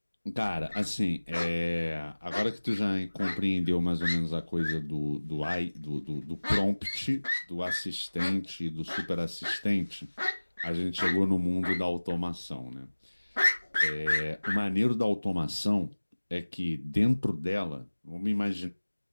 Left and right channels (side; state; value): both; inverted; correlation -1.00